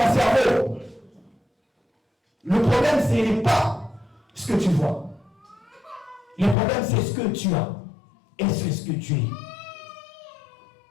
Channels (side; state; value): right; drops out; at 6.6 s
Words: cerveau. Le problème ce n'est pas ce que tu vois. Le problème c'est ce que tu as. Et c'est ce que tu es.